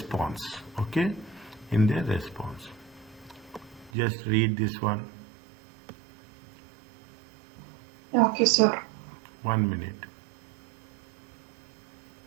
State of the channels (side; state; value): left; drops out; at 3.9 s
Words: Okay, in their response. Just read this one. Okay, sir. 1 minute.